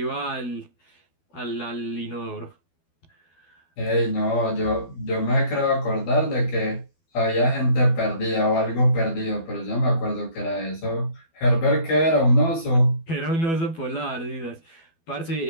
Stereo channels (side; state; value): right; late; 12 ms